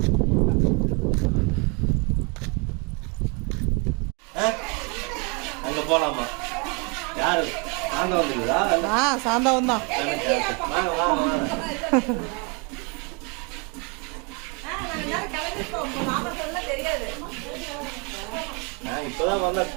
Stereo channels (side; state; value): left; quieter; 32.0 dB